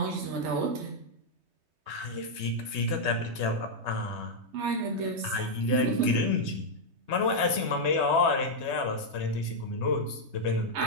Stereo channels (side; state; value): left; late; 3.2 ms